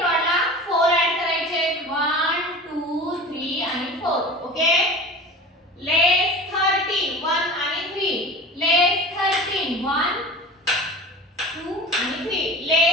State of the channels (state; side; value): normal; both; correlation 0.36